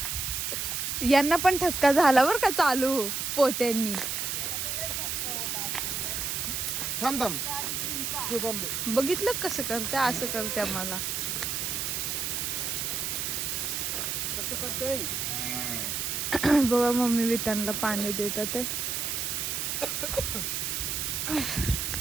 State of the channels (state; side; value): noise; right; hiss, 1 dB below the sound